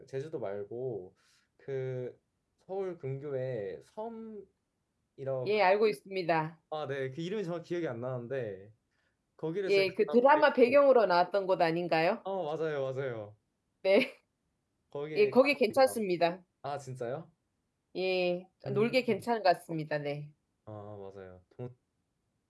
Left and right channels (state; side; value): identical; both; correlation 1.00